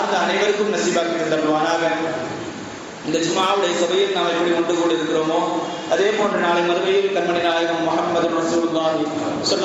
அனைவருக்கும் நசீபாக்கி தந்தருள்வானாக. இந்த ஜும்ஆவுடைய சபையில் நாம் எப்படி ஒன்று கூடி இருக்கிறோமோ அதே போன்று நாளை மறுமையில் கண்மணி நாயகம் முஹம்மது ரசூலுல்லாஹி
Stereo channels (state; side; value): identical; both; correlation 1.00